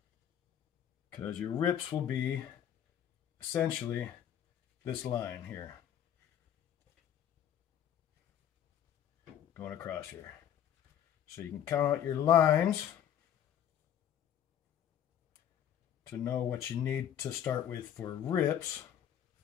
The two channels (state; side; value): quieter; right; 9.9 dB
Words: because your rips will be essentially this line here going across here. So you can count out your lines to know what you need to start with for rips.